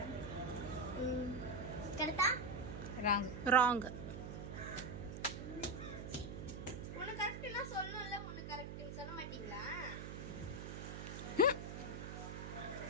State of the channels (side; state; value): right; noise; hum, 7 dB below the sound